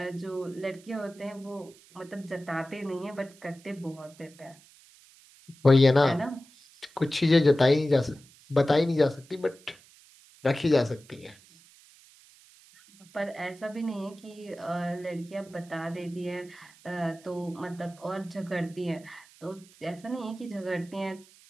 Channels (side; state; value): right; noise; hiss, 25 dB below the sound